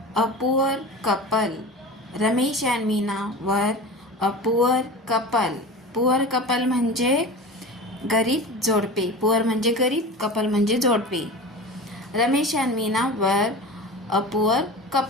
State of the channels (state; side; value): normal; both; correlation 0.32